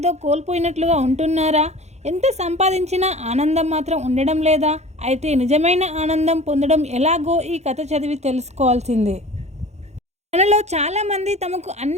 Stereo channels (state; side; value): late; left; 0.32 ms